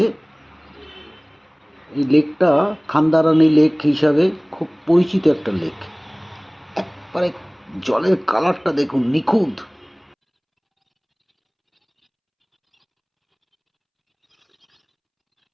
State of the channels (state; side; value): identical; both; correlation 1.00